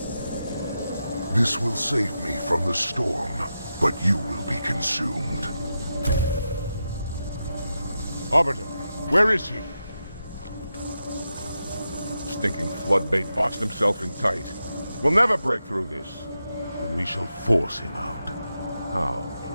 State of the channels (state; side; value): inverted; both; correlation -0.88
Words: This will save me from the storm, but you will be consumed. Arbiter, where is he? Stinking floodbait boxed himself in tight. We'll never break through this. Then we shall force him out. How?